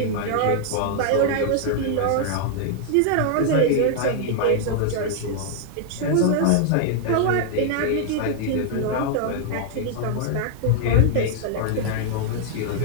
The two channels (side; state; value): both; different; correlation -0.01